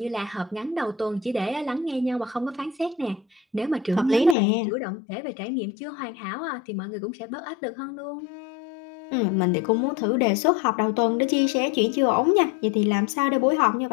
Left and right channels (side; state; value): right; drops out; at 4.4 s